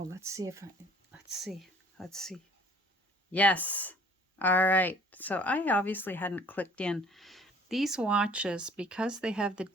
let's see. Let's see. Yes. All right. So I obviously hadn't clicked in. These watches, because they have the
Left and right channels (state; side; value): normal; both; correlation 0.53